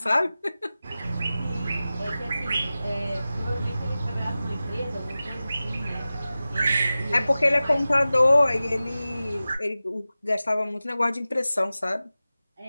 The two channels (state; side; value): inverted; both; correlation -0.95